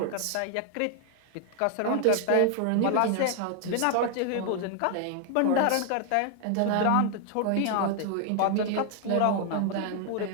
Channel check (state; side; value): different; both; correlation 0.00